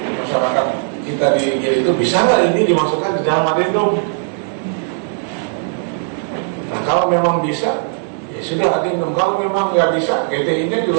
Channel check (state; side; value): silent; left; digital silence